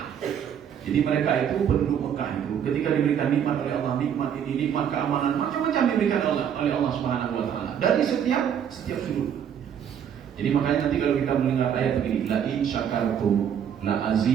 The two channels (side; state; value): left; quieter; 8.7 dB